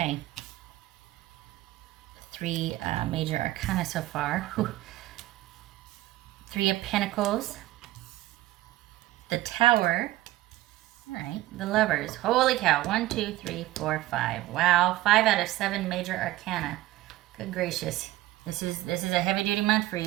3 major arcana so far. Whew. 3 of Pentacles. The Tower. All right, the Lovers. Holy cow. 1, 2, 3, 4, 5. Wow, 5 out of 7 major arcana. Good gracious. This is a heavy duty month for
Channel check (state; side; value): quieter; left; 16.5 dB